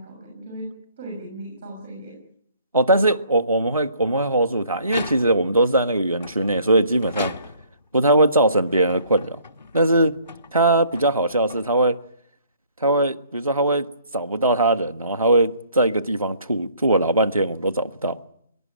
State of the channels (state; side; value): inverted; both; correlation -0.59